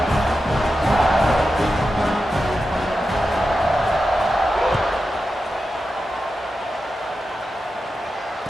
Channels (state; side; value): normal; both; correlation 0.90